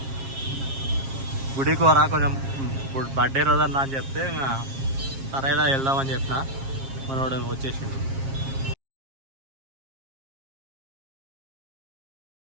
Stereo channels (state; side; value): late; left; 7.4 ms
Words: గుడికి వరా కొంచెం ఇప్పుడు బర్త్డే రోజన్నా అని చెప్తే ఇంకా సరేలా వెళ్దామని చెప్పిన. మనోడు వచ్చేసిండు.